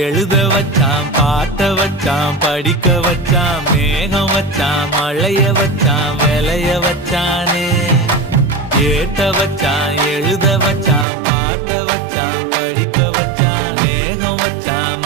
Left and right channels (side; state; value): left; drops out; at 11.1 s